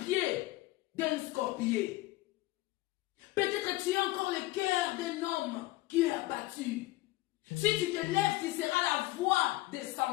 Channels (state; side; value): quieter; right; 18.9 dB